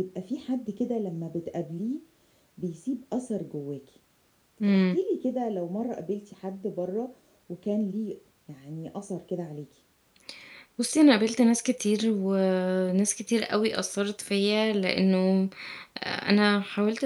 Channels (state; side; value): identical; both; correlation 1.00